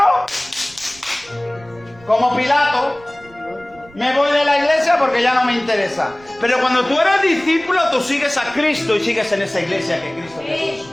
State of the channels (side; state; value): right; noise; rumble, 25 dB below the sound